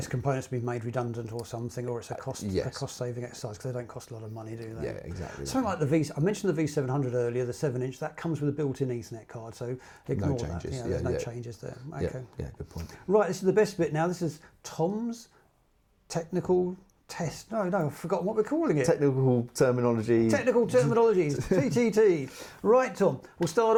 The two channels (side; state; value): both; identical; correlation 1.00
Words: components have been made redundant or something, or it's a cost-saving exercise because they don't cost a lot of money, do they? Yeah, exactly. Something like the I mentioned the V700 earlier, the 7-inch, that comes with a built-in Ethernet card, so ignore that. There's no changes there. Okay. Yeah, good point. Right, this is the best bit now. This is Tom's technical test. No, I've forgotten what we're calling it. Technical terminology. Technical terminologies, TTT. Right, Tom, we'll start